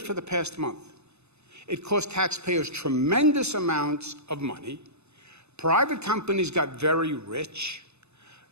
for the past month. It cost taxpayers tremendous amounts of money. Private companies got very rich.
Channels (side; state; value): left; late; 0.81 ms